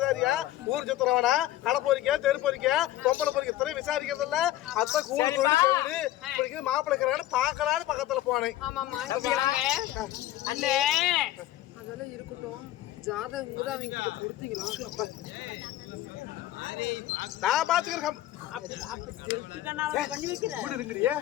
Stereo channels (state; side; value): quieter; right; 14.3 dB